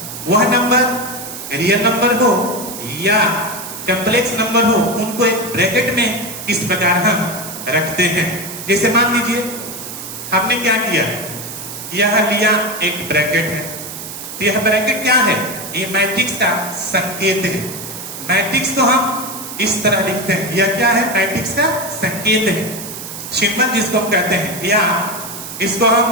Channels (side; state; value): right; noise; hiss, 10 dB below the sound